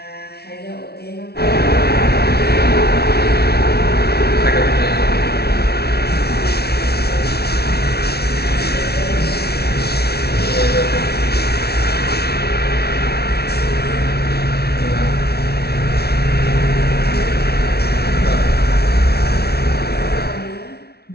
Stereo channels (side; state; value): right; late; 0.46 ms